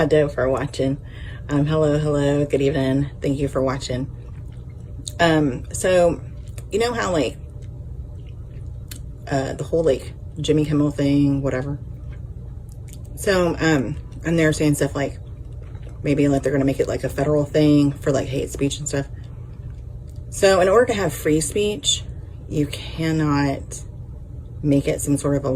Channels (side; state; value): both; identical; correlation 1.00